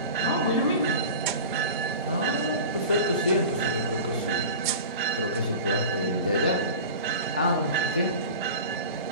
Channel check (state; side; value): inverted; both; correlation -0.34